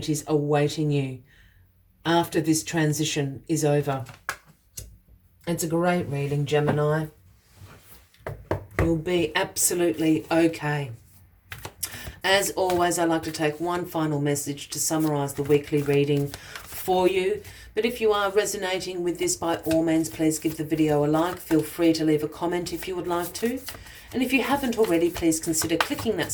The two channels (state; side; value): identical; both; correlation 1.00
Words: awaiting you after this transition is over. It's a great reading, Gemini. You'll be absolutely okay. As always, I like to take one final message to summarize the weekly reading for you. But if you are resonating with this, by all means, please give the video a like. Feel free to leave a comment if you would like to. And if you haven't already, please consider clicking that